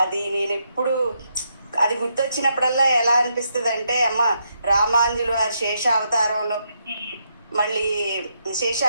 అది నేను ఎప్పుడు అది గుర్తొచ్చినప్పుడల్లా ఎలా అనిపిస్తుంది అంటే అమ్మ రామాంజులు వారి శేష అవతారంలో మళ్ళీ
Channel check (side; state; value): both; inverted; correlation -0.79